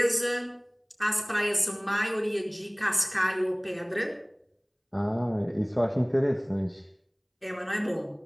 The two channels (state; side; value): identical; both; correlation 1.00